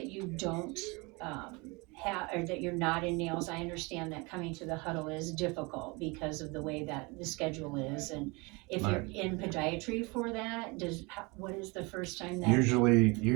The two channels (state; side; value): quieter; left; 27.1 dB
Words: don't have, or that you're not in nails. I understand that coming to the huddle is difficult because of the way that the schedule is, and if you're in podiatry for that, what is the first time that